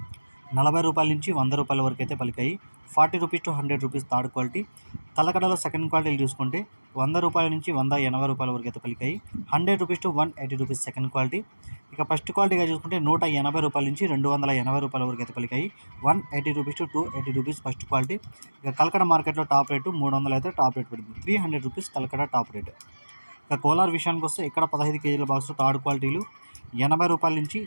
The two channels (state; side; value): inverted; both; correlation -1.00